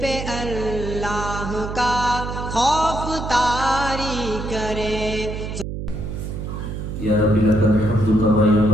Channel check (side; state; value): right; noise; hum, 6 dB below the sound